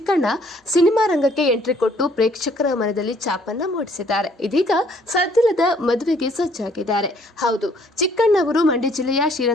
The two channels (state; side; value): normal; both; correlation 0.63